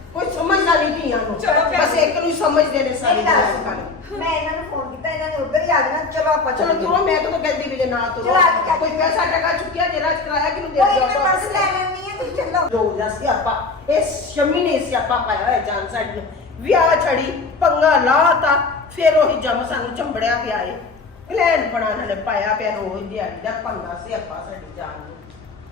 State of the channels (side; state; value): right; quieter; 4.0 dB